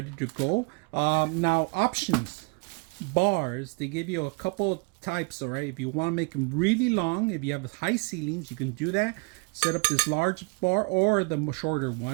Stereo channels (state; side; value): quieter; left; 33.0 dB